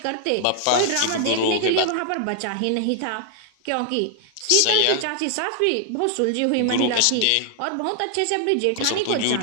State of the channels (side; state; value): both; different; correlation 0.00